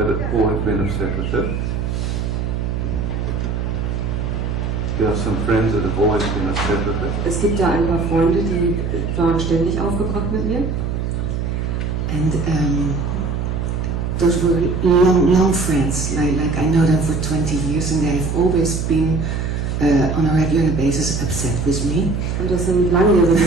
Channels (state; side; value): noise; right; hum, 2 dB below the sound